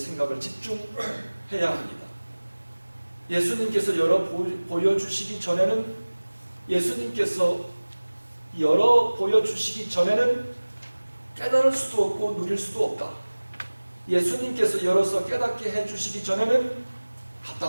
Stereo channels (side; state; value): both; inverted; correlation -1.00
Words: 집중해야 합니다. 예수님께서 보여주시기 전에는 깨달을 수도 없고 누릴 수도 없다. 예수님께서 열어서 깨닫게 해주시기 전에는